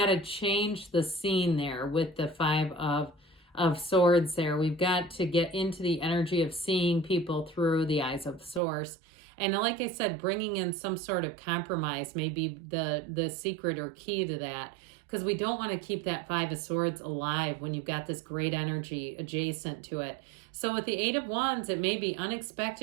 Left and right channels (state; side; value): drops out; left; at 8.6 s